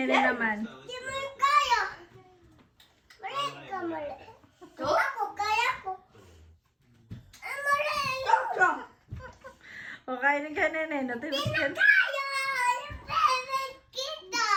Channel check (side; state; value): both; identical; correlation 1.00